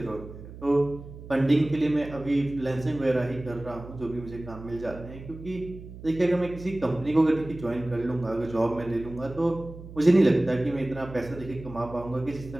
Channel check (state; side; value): noise; right; hum, 14 dB below the sound